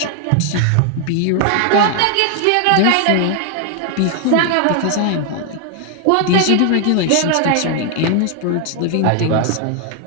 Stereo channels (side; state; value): both; different; correlation 0.00